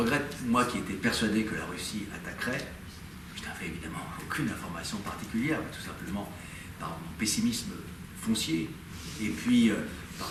moi qui étais persuadé que la Russie attaquerait, je n'avais évidemment aucune information particulière, mais tout simplement par mon pessimisme foncier, et puis par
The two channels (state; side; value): identical; both; correlation 1.00